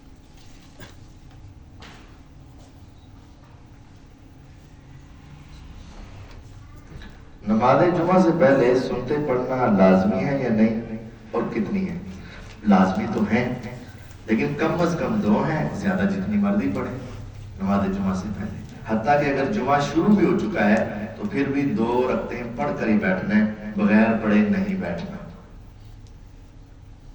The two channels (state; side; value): identical; both; correlation 1.00